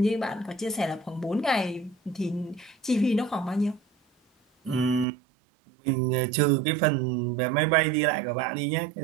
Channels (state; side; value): drops out; left; at 5.1 s